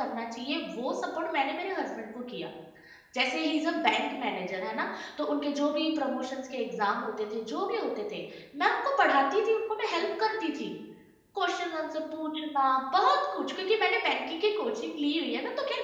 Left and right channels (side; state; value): both; identical; correlation 1.00